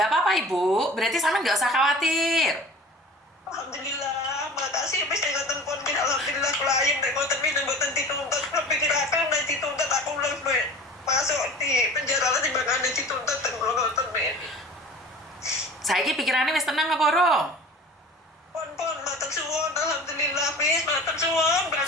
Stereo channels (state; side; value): normal; both; correlation 0.40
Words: apa-apa Ibu, berarti sampean nggak usah khawatir. Alhamdulillah, makasih Miss dengan telepon Miss. Alhamdulillah klien dan ngoten Miss dan ngoten dituntut, pikirakan dan dituntut aku lebih masuk di penjara lah timbangane dituntut dan ngoten Miss. Saiki pikirannya wis tenang apa urung? Pon matur suwun, alhamdulillah Miss, matur suwun